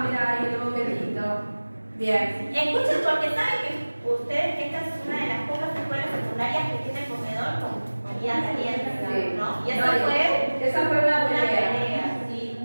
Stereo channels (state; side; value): inverted; both; correlation -1.00